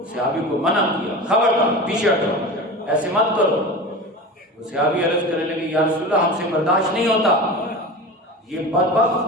صحابی کو منع کیا، خبردار پیچھے ہٹو، ایسے مت کرو. وہ صحابی عرض کرنے لگے یا رسول اللہ ہم سے برداشت نہیں ہوتا، یہ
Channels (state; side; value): normal; both; correlation 0.30